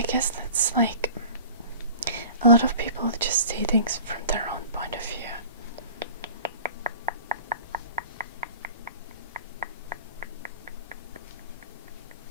guess that's a lot of people just see things from their own point of view.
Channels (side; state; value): both; inverted; correlation -0.42